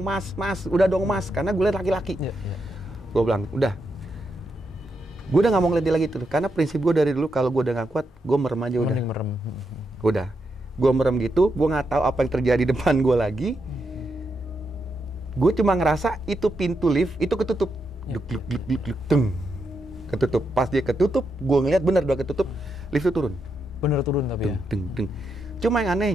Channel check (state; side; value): normal; both; correlation 0.83